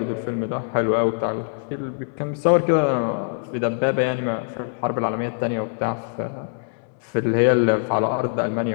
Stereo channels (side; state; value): right; silent; 63 dB below the other